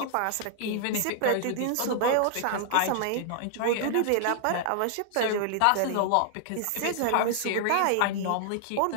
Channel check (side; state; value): both; different; correlation -0.01